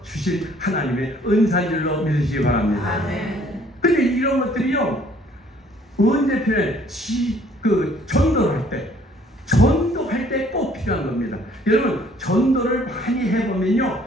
주신 하나님의 은사인 줄로 믿으시기 바랍니다. 근데 이런 것들이요 언제 필요해? 전도할 때 꼭 필요한 겁니다. 여러분 전도를 많이 해보면요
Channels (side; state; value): both; normal; correlation 0.59